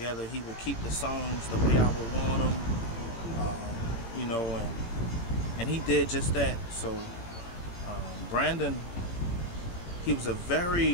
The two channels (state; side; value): late; right; 17 ms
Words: He would keep the songs the way I would want them, you know, and he did just that. So Brandon, he was a